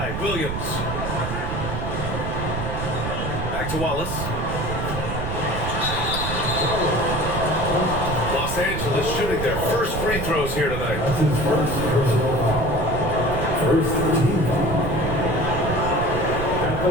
Williams. Back to Wallace. Los Angeles shooting their first free throws here tonight. That's his first personal foul. First team foul. At the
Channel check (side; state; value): right; noise; rumble, 4 dB below the sound